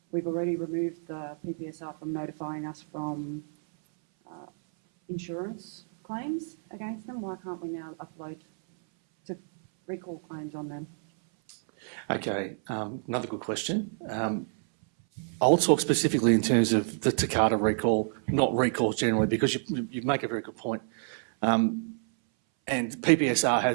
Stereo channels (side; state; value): left; silent; 59 dB below the other